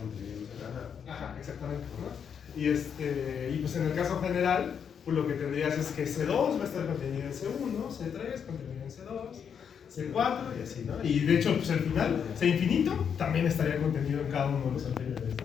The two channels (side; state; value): right; quieter; 7.4 dB